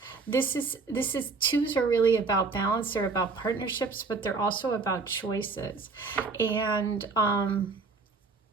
This is twos are really about balance. They're about partnerships, but they're also about choices. And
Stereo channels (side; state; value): left; quieter; 4.2 dB